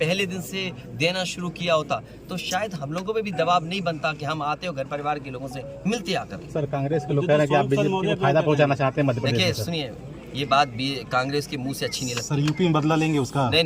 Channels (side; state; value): both; identical; correlation 1.00